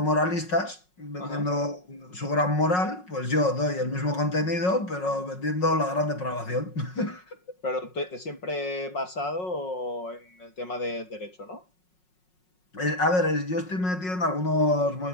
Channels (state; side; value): late; right; 5.5 ms